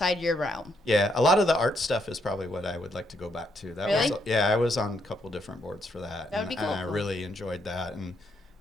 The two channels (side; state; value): both; normal; correlation 0.75